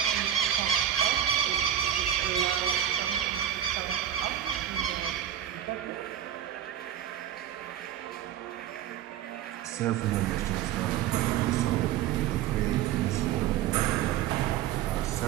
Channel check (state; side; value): quieter; left; 10.6 dB